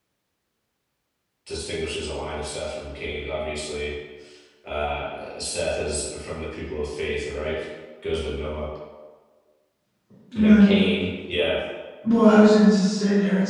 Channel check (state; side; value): identical; both; correlation 1.00